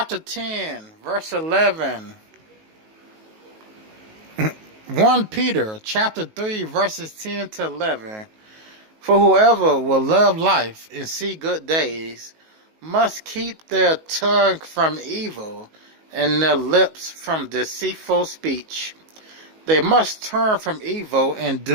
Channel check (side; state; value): left; late; 19 ms